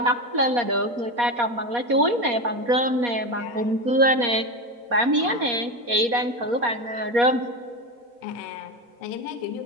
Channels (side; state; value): left; late; 4.2 ms